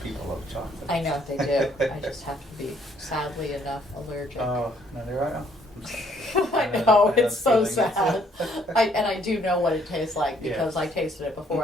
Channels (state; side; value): normal; both; correlation 0.66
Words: love chocolate. I know they do. I just have to be, sadly enough, allergic. Oh, no, there I am. I know, I it's so feeling sad. it. I do know what it tastes like Yeah. because I tasted it before